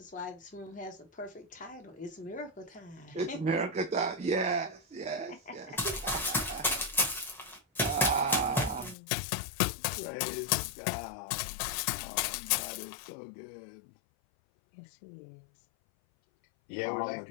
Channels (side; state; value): right; drops out; at 9.0 s